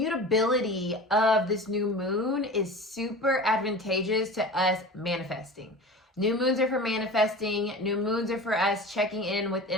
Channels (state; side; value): normal; both; correlation 0.35